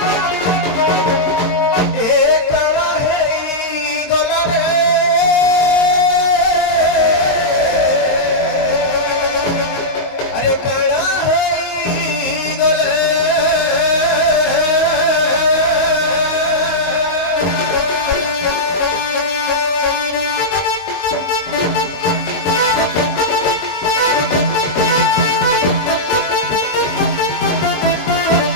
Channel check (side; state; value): right; late; 22 ms